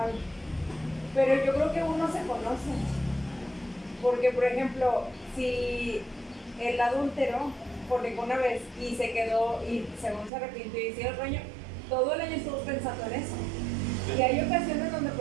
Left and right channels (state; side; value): drops out; left; at 10.3 s